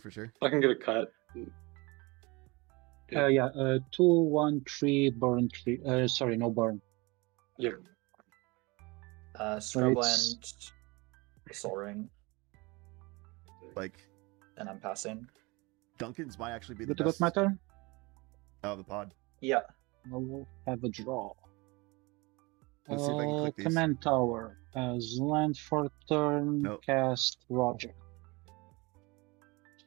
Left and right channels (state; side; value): quieter; left; 25.2 dB